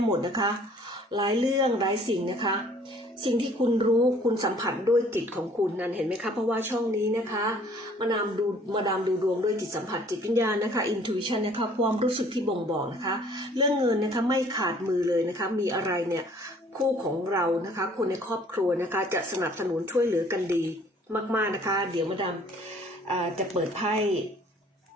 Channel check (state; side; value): normal; both; correlation 0.56